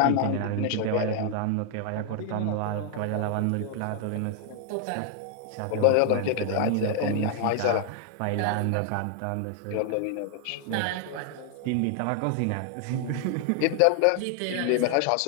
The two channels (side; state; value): both; different; correlation 0.00